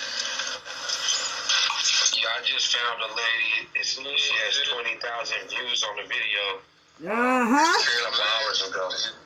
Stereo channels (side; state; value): both; identical; correlation 1.00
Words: Yeah, I just found a lady. She has 20,000 views on the video. 12 hours ago.